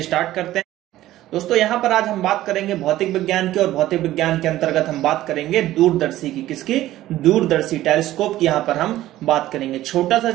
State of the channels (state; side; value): quieter; left; 14.8 dB